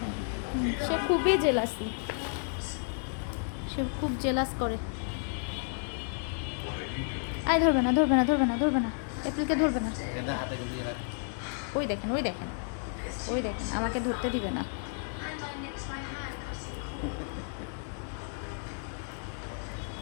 সে খুবই জেলাসি, সে খুব জেলাস করে। আয় ধরবে না ধরবে না ধরবে না ধরবে না, এপ্রিলকে ধরবে না। ওই দেখেন ওই দেখেন ওই দেখেন, আমাকে ধরতে দিবে না।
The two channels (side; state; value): right; silent; 57 dB below the other